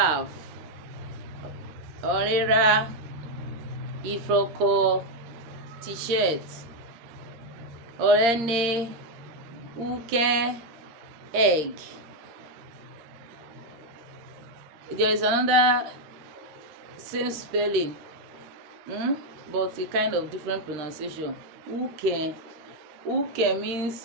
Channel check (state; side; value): late; left; 13 ms